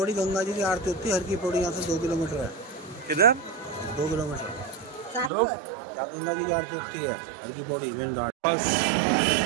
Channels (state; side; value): drops out; left; at 5.3 s